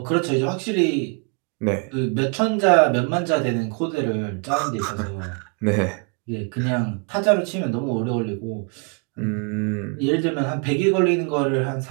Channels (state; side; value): quieter; left; 37.3 dB